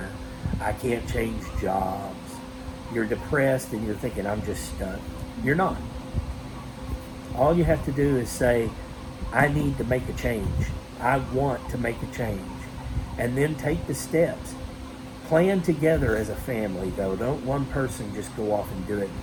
I can't change jobs, you're depressed and you're thinking, I'm just stuck. You're not. All you have to do is say, I need to make a change. I want to make a change. And then take the steps. Plan together as a family, though. Don't one person just go off and do it,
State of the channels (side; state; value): both; identical; correlation 1.00